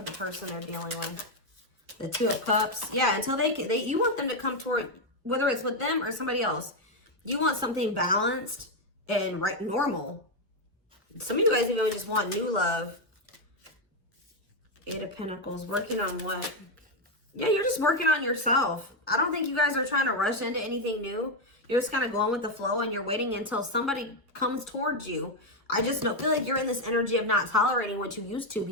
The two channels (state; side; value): normal; both; correlation 0.05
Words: the person they're dealing with? The Two of Cups. Yeah, until you want them to come toward, whether it's with them or somebody else. You want something balanced and normal. Some of you guys even just want new love. Eight of Pentacles. Working on what? Yeah, you're just working on yourself. I don't think you guys are trying to rush into anything new. You're just kind of going with the flow and you're waiting until somebody comes towards you. I just feel like you're in this energy of not tolerating what you used to